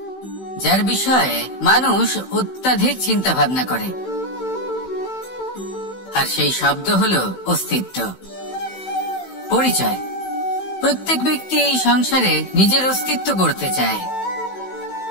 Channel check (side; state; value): right; late; 16 ms